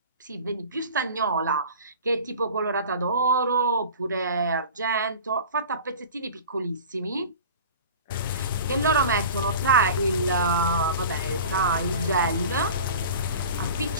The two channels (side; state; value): both; inverted; correlation -0.39